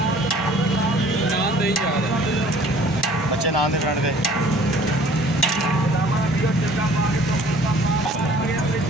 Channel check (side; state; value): both; normal; correlation 0.53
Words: बच्चे नाम दे फ्रेंड दे